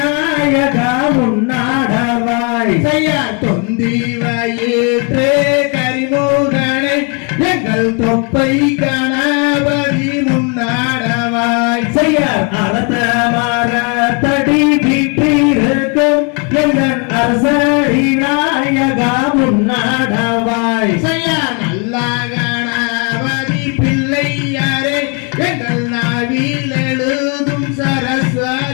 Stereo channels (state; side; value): quieter; right; 35.2 dB